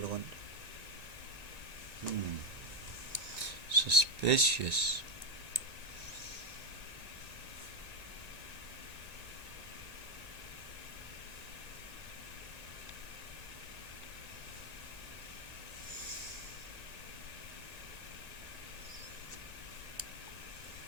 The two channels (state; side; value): late; left; 1.9 ms